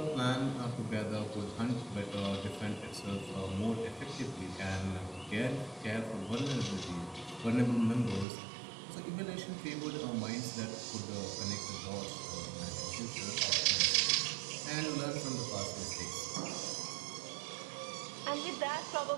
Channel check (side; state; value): left; drops out; at 8.2 s